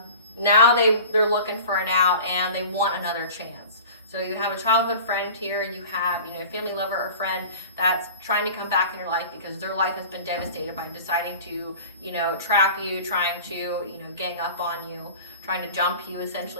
they're looking for an out, and they want another chance. So you have a childhood friend here, you have, you know, a family lover or friend that's trying to come back in your life because their life has been devastated by deciding to, you know, trap you, trying to, you know, gang up on you, trying to jump you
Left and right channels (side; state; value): both; inverted; correlation -0.41